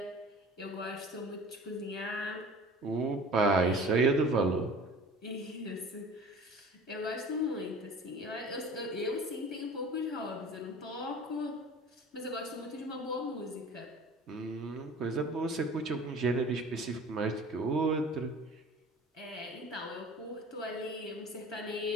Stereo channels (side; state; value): both; normal; correlation 0.43